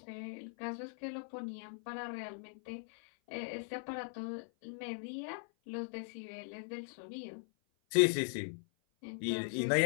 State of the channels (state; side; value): silent; right; 51 dB below the other